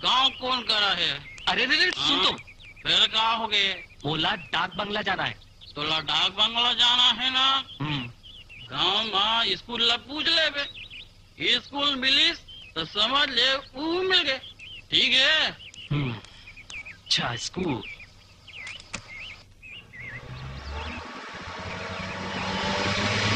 गांव कौन करा है। अरे रे सुन तो। फिर क्या हो गए? बोला डाक बंगला जाना है। तोला डाक बंगला जाना है ना। गांव में स्कूल ला पूछ ले बे। स्कूल मिलीस तो समझ ले वो मिल गए। ठीक है। अच्छा स्कूल।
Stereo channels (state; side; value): identical; both; correlation 1.00